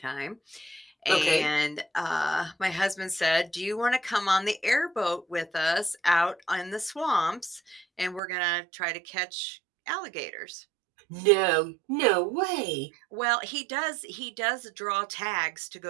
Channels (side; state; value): left; drops out; at 8.2 s